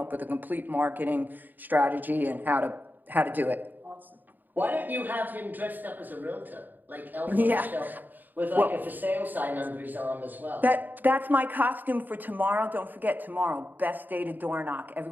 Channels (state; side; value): late; left; 0.088 ms